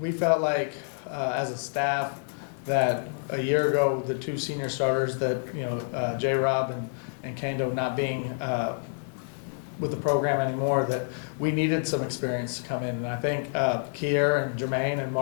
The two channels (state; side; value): silent; right; 59 dB below the other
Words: felt like as a staff that a year ago, the two senior starters that, J-Rob and Kendo not being with the program anymore, that we needed some experience to come in. And I think Kier and Jermaine and